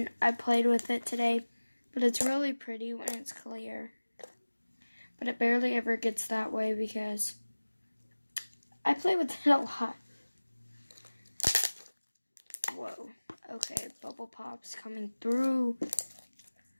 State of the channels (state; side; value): inverted; both; correlation -1.00